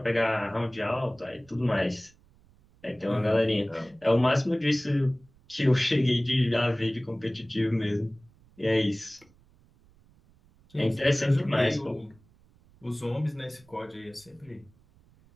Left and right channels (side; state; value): right; noise; rumble, 29 dB below the sound